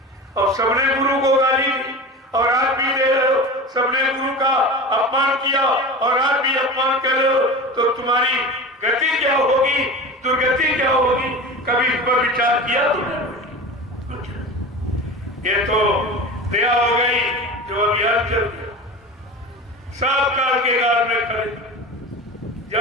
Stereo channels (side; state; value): both; normal; correlation 0.31